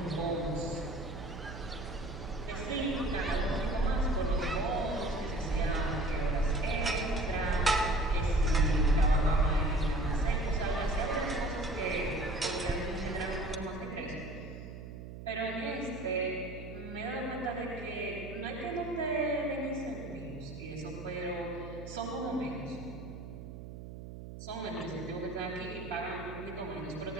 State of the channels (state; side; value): noise; right; hum, 11 dB below the sound